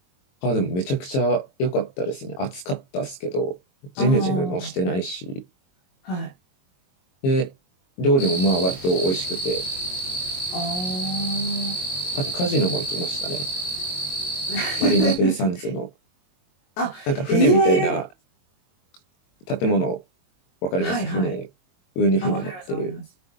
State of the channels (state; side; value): late; right; 22 ms